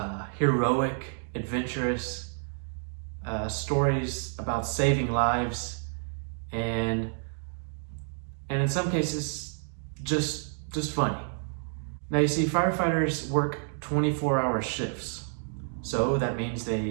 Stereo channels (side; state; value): left; silent; digital silence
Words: heroic, adventurous, stories about saving lives, and in some cases, just funny. Now you see, firefighters work 24-hour shifts, so that means